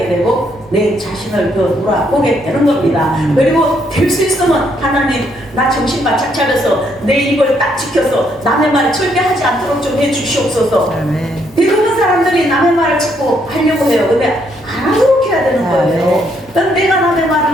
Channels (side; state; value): both; normal; correlation 0.72